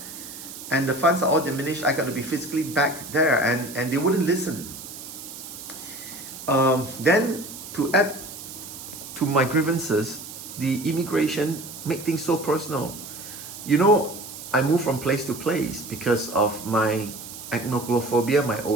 And the funds are all diminished. I got to be physically back there, and they wouldn't listen. Then to add to my grievances, the immigration make things so personal. You know, I move from place to place because of my acnophobia, my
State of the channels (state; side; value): noise; right; hiss, 12 dB below the sound